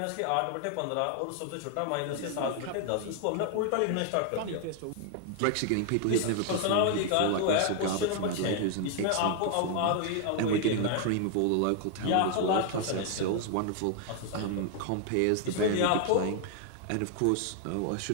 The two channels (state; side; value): different; both; correlation 0.00